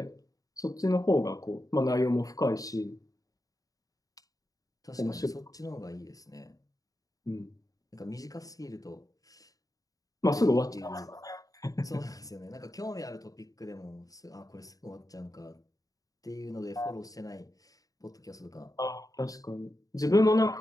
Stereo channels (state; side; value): late; right; 0.17 ms